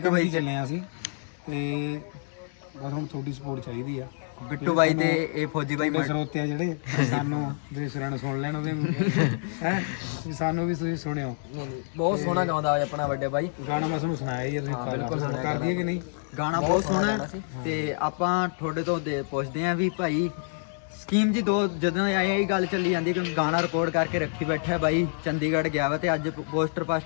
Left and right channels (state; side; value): silent; right; digital silence